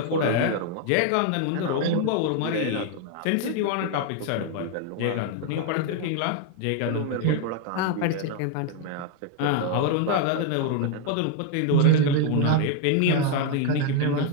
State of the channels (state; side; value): different; both; correlation 0.01